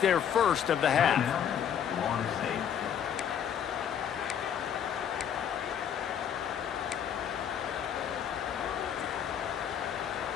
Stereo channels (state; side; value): quieter; right; 8.8 dB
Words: their first of the half.